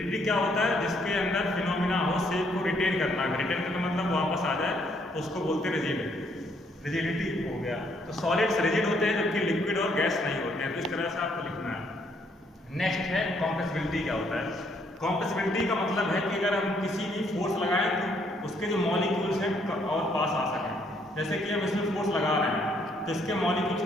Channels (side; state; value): both; normal; correlation 0.69